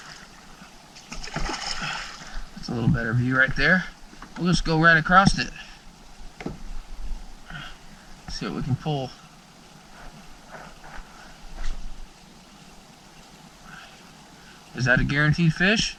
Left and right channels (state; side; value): identical; both; correlation 1.00